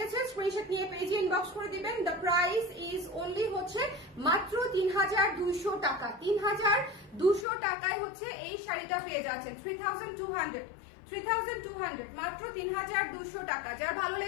স্ক্রিনশট নিয়ে পেজে ইনবক্স করে দিবেন। দ্য প্রাইস ইজ অনলি হচ্ছে মাত্র 3200 টাকা। 3200 টাকায় হচ্ছে এই শাড়িটা পেয়ে যাচ্ছেন, 3200 মাত্র 3200 টাকা। যার ভালো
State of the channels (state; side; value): drops out; right; at 7.5 s